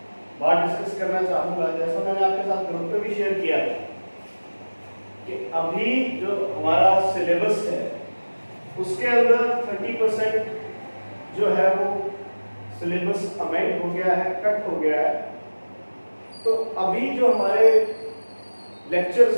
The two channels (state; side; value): inverted; both; correlation -1.00